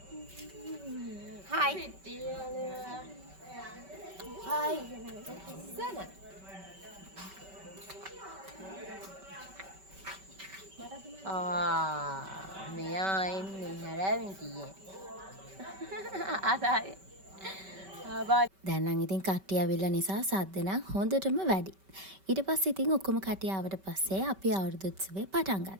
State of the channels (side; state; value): left; late; 5.2 ms